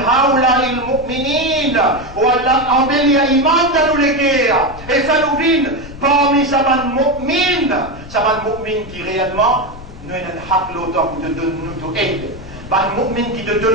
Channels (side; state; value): left; noise; rumble, 15 dB below the sound